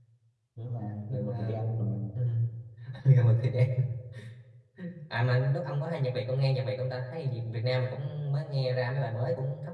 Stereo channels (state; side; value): identical; both; correlation 1.00